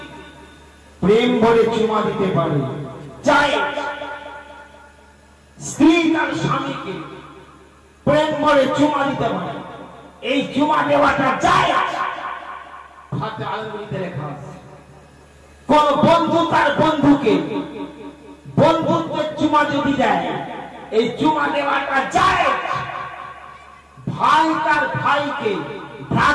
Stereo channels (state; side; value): identical; both; correlation 1.00